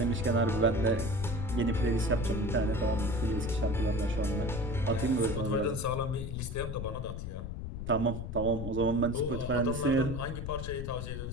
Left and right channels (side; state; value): left; noise; rumble, 6 dB below the sound